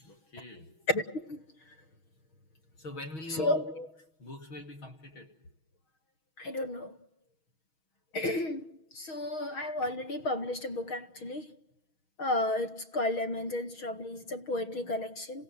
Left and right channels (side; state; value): right; late; 6.3 ms